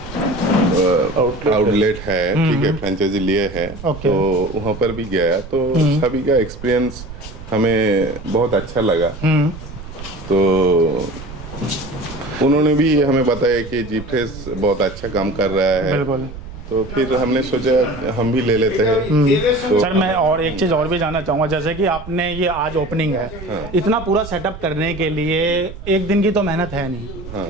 आउटलेट है, ठीक है, फ्रेंचाइजी लिए है। तो वहाँ पर भी गया, तो सभी का एक्सपीरियंस हमें बहुत अच्छा लगा। तो उन्होंने भी हमें बताया कि जी फ्रेश बहुत अच्छा काम कर रहा है। बिल्कुल। तो फिर हमने सोचा हम भी ले लेते हैं। तो सर मैं और एक चीज़ और भी जानना चाहूँगा, जैसे कि आपने ये आज ओपनिंग है, इतना पूरा सेटअप करने के लिए एक दिन की तो मेहनत है नहीं।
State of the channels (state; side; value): noise; right; rumble, 13 dB below the sound